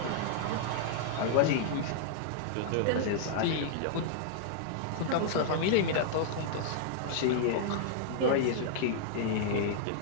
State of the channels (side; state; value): both; different; correlation -0.01